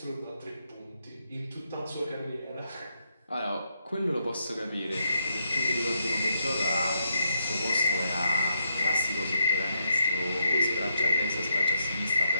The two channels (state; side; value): inverted; both; correlation -0.79